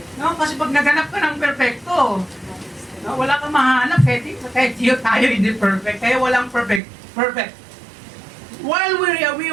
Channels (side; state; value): left; drops out; at 6.8 s